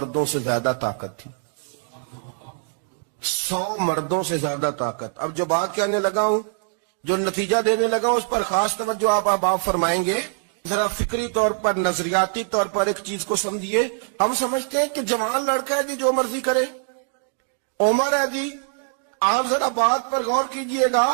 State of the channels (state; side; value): silent; left; 63 dB below the other